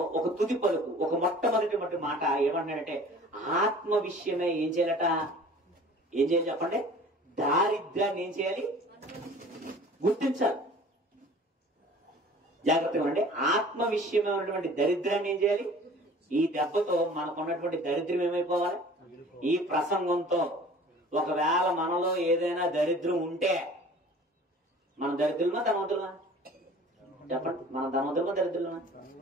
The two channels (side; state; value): both; normal; correlation 0.46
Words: ఒక తుది పలుకు, ఒక మొట్టమొదటి మాట ఏమన్నాడంటే, ఆత్మ విషయమే ఏం చేయాలట? ఏం చేయాలి చెప్పండి? దారిద్ర్యాన్ని ఏం చేయాలి? గుర్తించాలి. జాగ్రత్తగా ఉండండి. ఆత్మ విషయమే ఉన్నటువంటి దరిద్రాన్ని ఏం చేయాలి? ఈ దెబ్బతో మనకున్నటువంటి దరిద్రం ఏమైపోవాలి? ఈ ప్రసంగంతో ఒకవేళ మనలో ఏదైనా దరిద్రం ఉంటే, మన దరిద్రులమా ధనవంతులమా? చెప్పండి, మన ధనవంతులమా దరిద్రులమా?